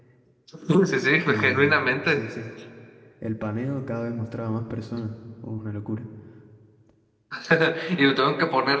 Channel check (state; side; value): identical; both; correlation 1.00